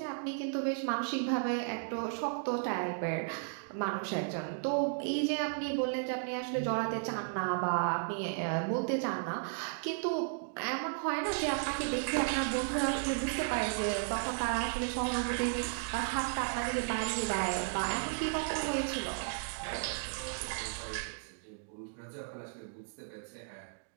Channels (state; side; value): silent; left; digital silence